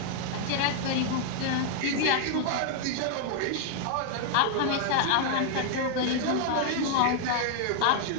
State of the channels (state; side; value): different; both; correlation 0.00